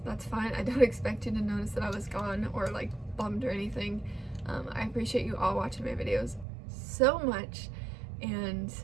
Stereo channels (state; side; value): drops out; left; at 6.5 s